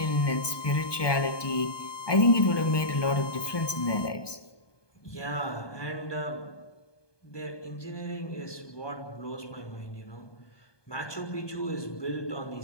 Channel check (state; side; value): late; right; 1.2 ms